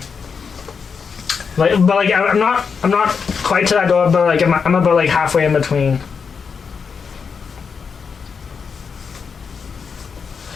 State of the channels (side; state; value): right; quieter; 5.9 dB